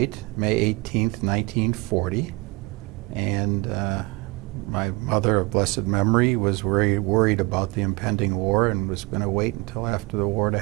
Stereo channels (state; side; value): quieter; left; 23.5 dB